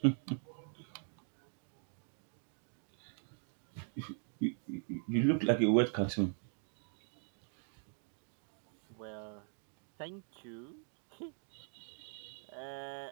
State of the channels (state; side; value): silent; left; 50 dB below the other